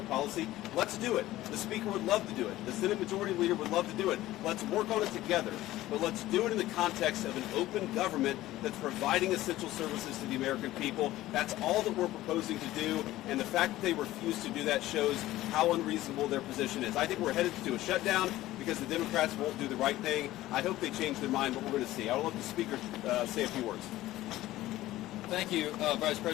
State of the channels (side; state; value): right; quieter; 15.8 dB